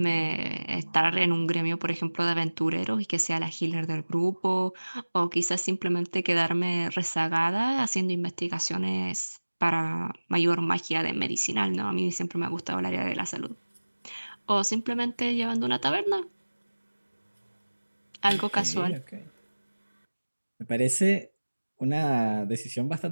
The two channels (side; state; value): both; inverted; correlation -1.00